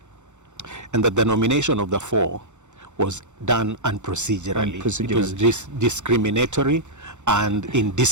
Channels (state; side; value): late; left; 0.84 ms